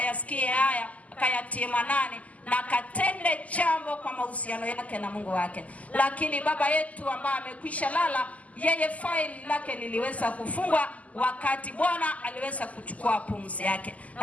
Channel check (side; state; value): right; late; 0.073 ms